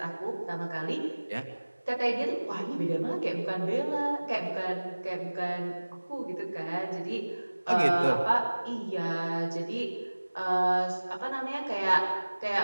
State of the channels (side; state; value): both; inverted; correlation -1.00